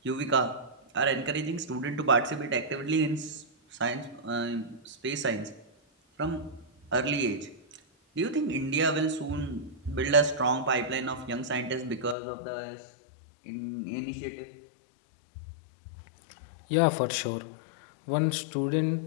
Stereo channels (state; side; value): drops out; right; at 12.2 s